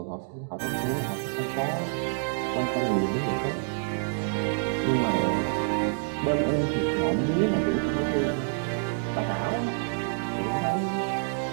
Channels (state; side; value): silent; left; digital silence